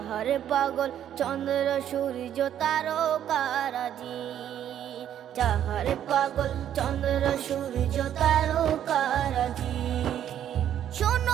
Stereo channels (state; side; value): quieter; left; 10.4 dB